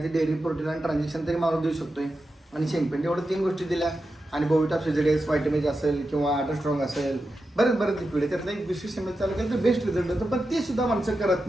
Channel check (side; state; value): both; normal; correlation 0.90